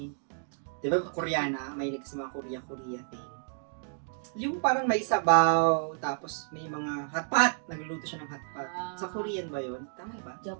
Diba Koreana, may sa mga Korea thing. Yung parang may sabaw, tapos may mga hotpot. Nagluluto siya ng hotpot. Ah. Sa Korean ba yun? Tama ba?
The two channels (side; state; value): left; silent; digital silence